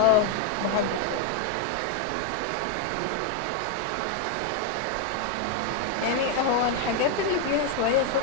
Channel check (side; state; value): both; different; correlation 0.01